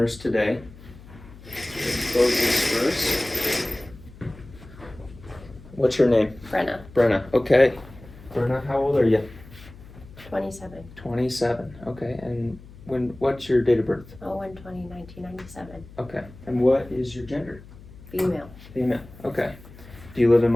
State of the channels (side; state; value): left; noise; hum, 19 dB below the sound